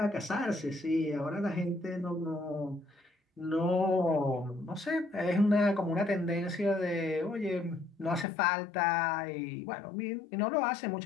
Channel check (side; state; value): right; drops out; at 8.2 s